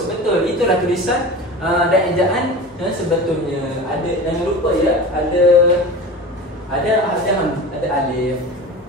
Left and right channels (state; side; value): normal; both; correlation 0.33